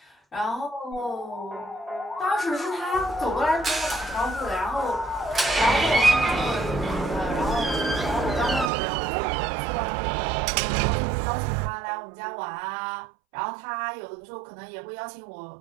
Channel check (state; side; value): drops out; left; at 8.7 s